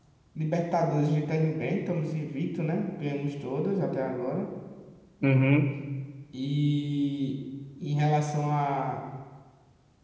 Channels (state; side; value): identical; both; correlation 1.00